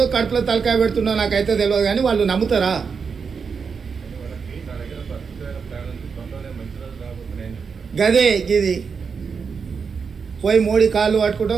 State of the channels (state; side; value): quieter; left; 5.7 dB